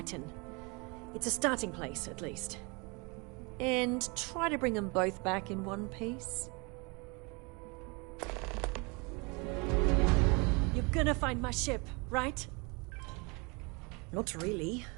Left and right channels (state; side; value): quieter; left; 29.4 dB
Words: It's a starting place, at least. And try to bring them both back in one piece. You're gonna find my ship, right? Not really.